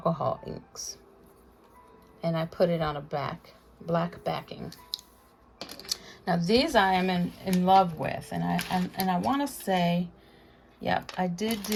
inks, and I put it on a black backing. Now these I am in love with, and I want to say, yep, I did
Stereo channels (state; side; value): identical; both; correlation 1.00